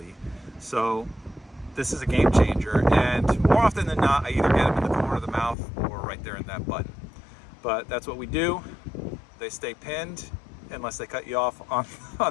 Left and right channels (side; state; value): right; drops out; at 5.6 s